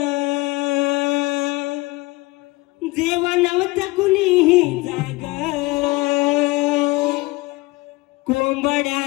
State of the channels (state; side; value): quieter; right; 21.9 dB